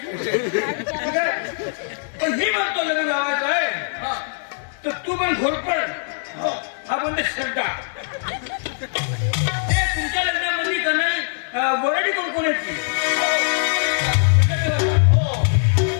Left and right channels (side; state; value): right; silent; digital silence